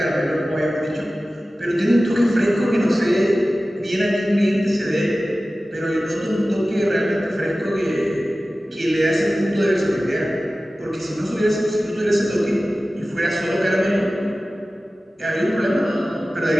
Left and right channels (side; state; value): both; normal; correlation 0.96